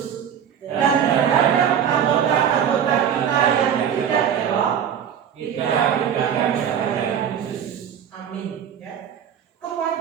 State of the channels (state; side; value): quieter; left; 8.7 dB